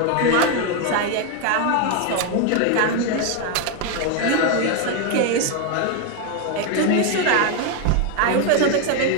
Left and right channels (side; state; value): both; different; correlation 0.01